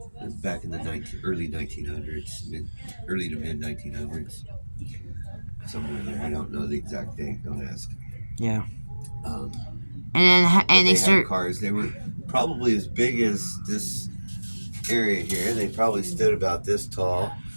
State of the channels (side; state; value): both; inverted; correlation -1.00